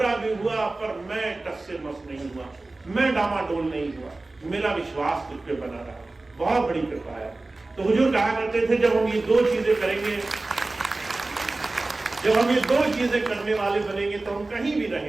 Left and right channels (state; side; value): quieter; left; 3.1 dB